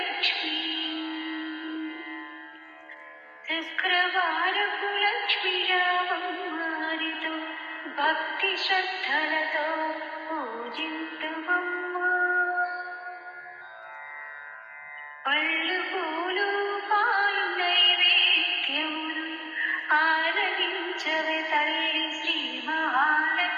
శుక్రవారపు లక్ష్మీరామమ్మరితో భక్తి శ్రద్ధలతో పూజింతుమమ్మా. పళ్ళు పూలు పాలు నైవేద్యములు ఆరగించవే తల్లి శ్రీ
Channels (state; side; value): identical; both; correlation 1.00